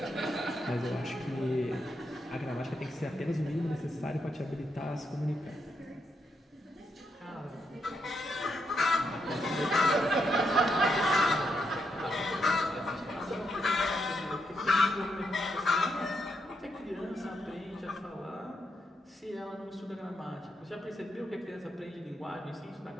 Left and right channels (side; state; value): both; normal; correlation 0.80